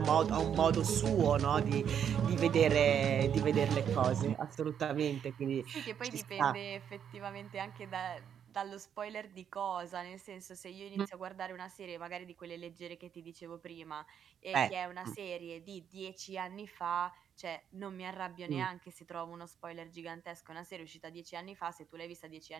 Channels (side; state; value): left; quieter; 8.5 dB